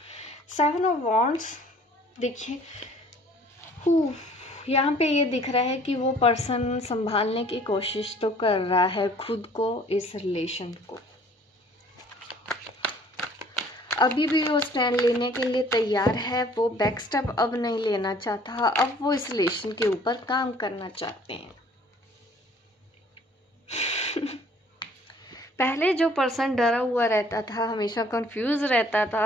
सेवन ऑफ वॉन्ड्स, देखिए यहाँ पे ये दिख रहा है कि वो पर्सन संभालने की कोशिश तो कर रहा है खुद को, इस रिलेशन को। अभी भी वो स्टैंड लेने के लिए तैयार है, वो बैक स्टेप अब नहीं लेना चाहता, अब वो इस रिलेशन के ऊपर काम करना चाहते हैं। पहले जो पर्सन डरा हुआ रहता था, हमेशा कंफ्यूज रहता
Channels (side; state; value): both; normal; correlation 0.55